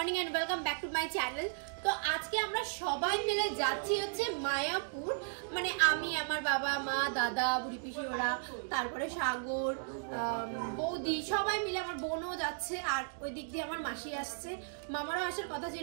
and welcome back to my channel. তো আজকে আমরা সবাই মিলে যাচ্ছি হচ্ছে মায়াপুর, মানে আমি, আমার বাবা মা, দাদা, বুড়ি পিসি ওরা, তারপরে সাগর, বৌদি, সবাই মিলে, আমার বোনও যাচ্ছে, আর ওই দিক দিয়ে আমার মাসি আসছে, মামারও আসার কথা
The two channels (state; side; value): silent; left; digital silence